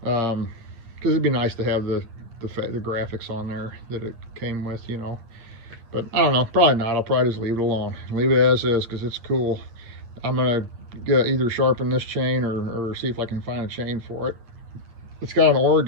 it'd be nice to have the graphics on there that it came with, but I don't know, probably not. I'll probably just leave it alone, leave it as is, because it's cool. I'm gonna either sharpen this chain or see if I can find a chain for it. It's got an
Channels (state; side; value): late; left; 9.2 ms